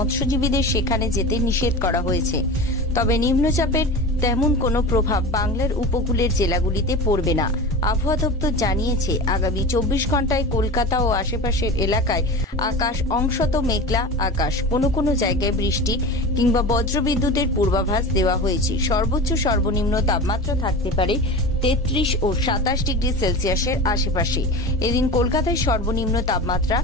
সেখানে যেতে নিষেধ করা হয়েছে। তবে নিম্নচাপের তেমন কোনো প্রভাব বাংলার উপকূলের জেলাগুলিতে পড়বে না। আবহাওয়া দপ্তর জানিয়েছে, আগামী 24 ঘন্টায় কলকাতা ও আশেপাশের এলাকায় আকাশ অংশত মেঘলা আকাশ, কোনো কোনো জায়গায় বৃষ্টি কিংবা বজ্রবিদ্যুতের পূর্বাভাস দেওয়া হয়েছে। সর্বোচ্চ সর্বনিম্ন তাপমাত্রা থাকতে পারে 33 ও 27 ডিগ্রি সেলসিয়াসের আশেপাশে। এদিন কলকাতায় সর্বনিম্ন তাপমাত্রা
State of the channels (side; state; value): both; normal; correlation 0.31